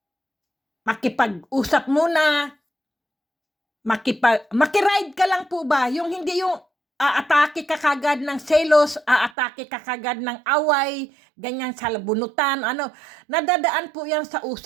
makipag-usap muna, makiride ka lang po ba? Yung hindi yung aatake ka kagad ng selos, aatake ka kagad ng away, ganyan sa bunutan, nadadaan po yan sa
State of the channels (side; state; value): left; drops out; at 9.3 s